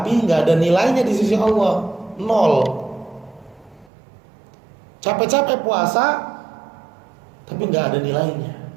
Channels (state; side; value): drops out; left; at 3.9 s